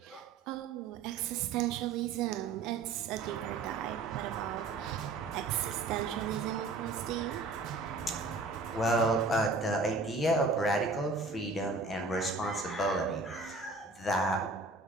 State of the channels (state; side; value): quieter; left; 3.6 dB